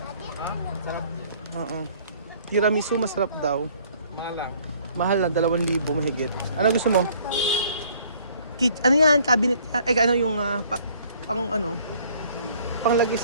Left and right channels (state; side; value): inverted; both; correlation -0.58